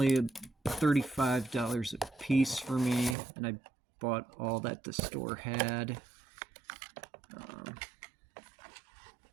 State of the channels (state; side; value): drops out; left; at 3.2 s